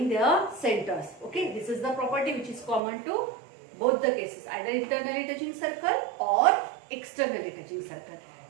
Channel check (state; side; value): drops out; left; at 2.8 s